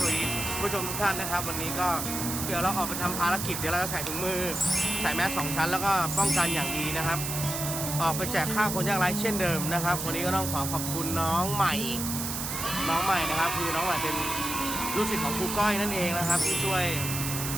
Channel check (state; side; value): noise; right; hiss, 4 dB below the sound